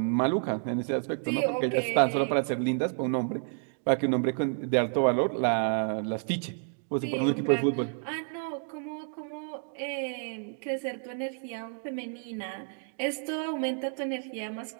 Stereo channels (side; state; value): left; silent; 58 dB below the other